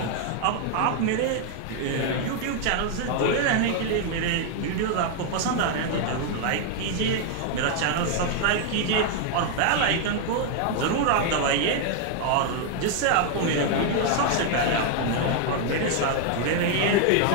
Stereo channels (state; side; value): different; both; correlation 0.00